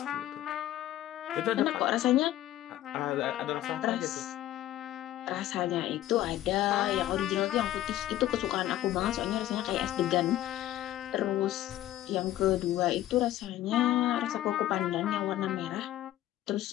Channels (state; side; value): quieter; right; 13.8 dB